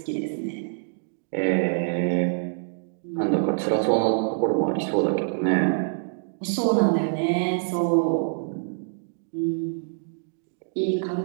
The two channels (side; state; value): left; silent; digital silence